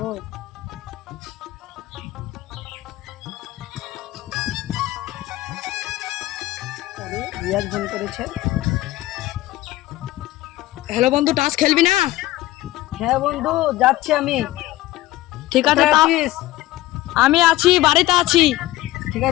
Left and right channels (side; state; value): right; quieter; 16.7 dB